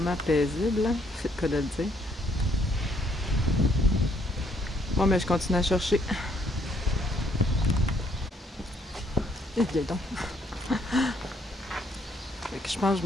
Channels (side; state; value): both; normal; correlation 0.68